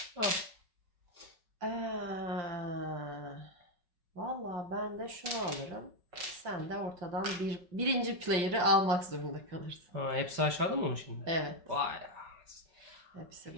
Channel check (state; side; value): late; left; 5.4 ms